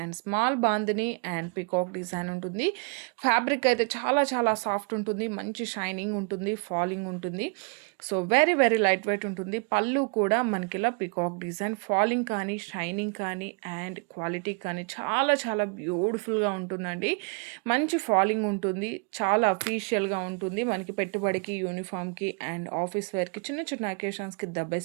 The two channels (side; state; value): left; quieter; 37.0 dB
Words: and small bandhani and peacock design ఉంటుంది. ఫ్యాబ్రిక్ అయితే చాలా చాలా సాఫ్ట్ ఉంటుంది. మంచి షైనింగ్ ఉంటుంది. ఫాలింగ్ ఉంటుంది. So very very light wait ఉంటుంది. పళ్ళు కూడా మనకి ఇలా పికాక్ డిజైన్ ఫాలింగ్ కానీ షైనింగ్ కానీ అండ్ క్వాలిటీ కానీ చాలా చాలా బ్యూటిఫుల్గా ఉంటుందండి. మంచి ఫాలింగ్ ఉంటుంది. చాలా అఫీషియల్గా ఉంటుంది. మనకి పెట్టుబడికి యూనిఫామ్కి అండ్ ఆఫీస్ వేర్కి చిన్న చిన్న అకేషన్స్కి ద